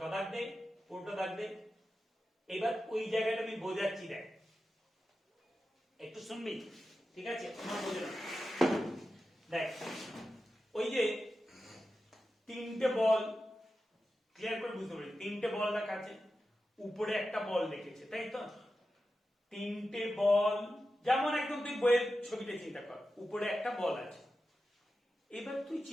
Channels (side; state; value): both; normal; correlation 0.92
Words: দাগ দে, পুরোটা দাগ দে। এবার ওই জায়গাটা আমি বোঝাচ্ছি, দেখ একটু শুনবি, ঠিক আছে? আমার বোঝে না, দেখ ওই যে তিনটে বল, ক্লিয়ার করে বুঝতে পারি, তিনটে বল রাখা আছে, উপরে একটা বল রেখেছে, তাই তো? তিনটে বল, যেমন একদম তুই বইয়ের ছবিটা চিন্তা কর, উপরে একটা বল আছে। এবার তুই